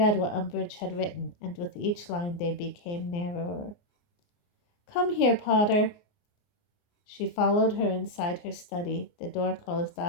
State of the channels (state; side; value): late; right; 29 ms